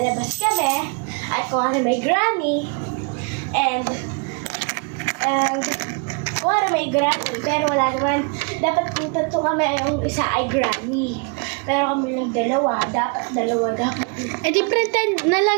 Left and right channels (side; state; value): left; quieter; 33.6 dB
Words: kami, at kung nga rin may granny, and kung nga rin may granny, pero wala naman, dapat kung tatlo kami, yung isa ay granny. Pero kami lang dalawa, dapat. Eh di pretend na